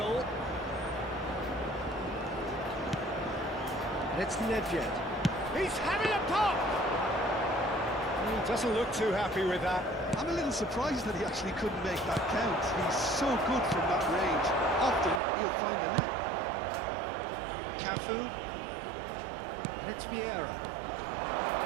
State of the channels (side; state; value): left; drops out; at 15.2 s